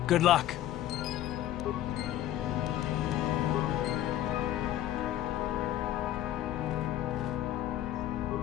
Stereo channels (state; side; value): quieter; right; 13.1 dB